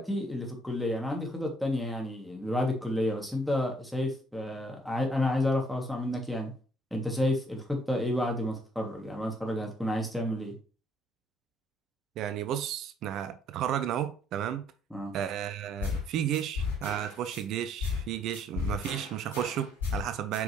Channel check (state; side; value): normal; both; correlation 0.64